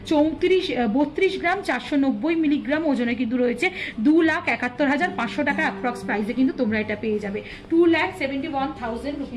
32 গ্রাম 490 মিলিগ্রাম ওজনে কিন্তু রয়েছে। 2,71,500 টাকা অ্যাপ্রক্স প্রাইসে কিন্তু তোমরা এটা পেয়ে যাবে। 2,71,000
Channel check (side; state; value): both; identical; correlation 1.00